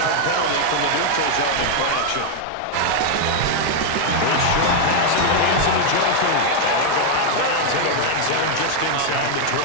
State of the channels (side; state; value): both; different; correlation 0.00